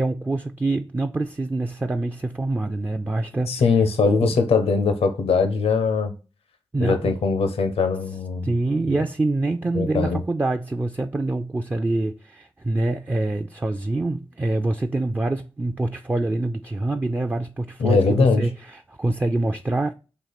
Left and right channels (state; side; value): normal; both; correlation 0.80